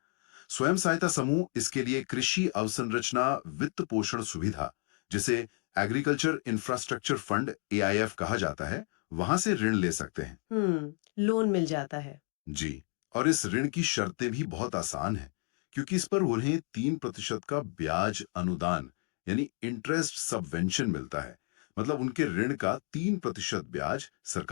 स्वयं सहायता समूह इसके लिए कृषि अवसंरचना वित्त पोषण सुविधा, जिसे एग्रीकल्चर इंफ्रास्ट्रक्चर फंड AIF कहा जाता है, वहां से ऋण ले सकते हैं। लोन मिल जाता है। जी, और इस ऋण की शर्तें भी बहुत आसान हैं, क्योंकि इस पर उन्हें 3% का ब्याज अनुदान यानी इंटरेस्ट सबवेंशन मिलता है। मतलब उनके ऋण का 3% ब्याज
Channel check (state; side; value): quieter; right; 35.3 dB